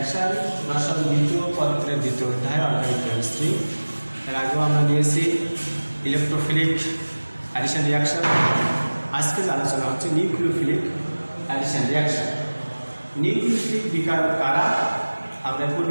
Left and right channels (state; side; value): inverted; both; correlation -1.00